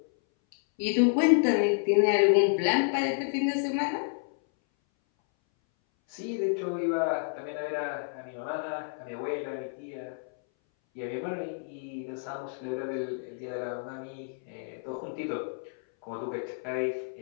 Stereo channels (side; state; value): right; silent; 58 dB below the other